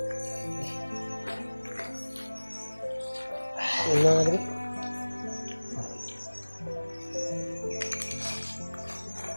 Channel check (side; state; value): both; inverted; correlation -1.00